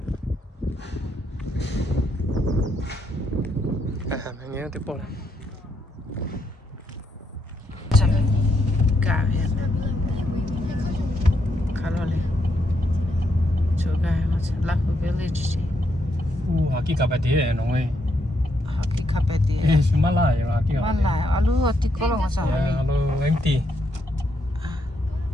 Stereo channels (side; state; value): both; normal; correlation 0.78